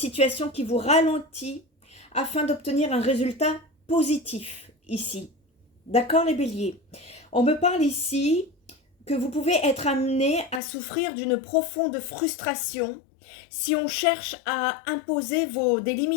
qui vous ralentit afin d'obtenir un résultat positif ici. D'accord les béliers? On me parle ici que vous pouvez être amené à souffrir d'une profonde frustration si on cherche à imposer des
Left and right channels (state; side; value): drops out; right; at 10.6 s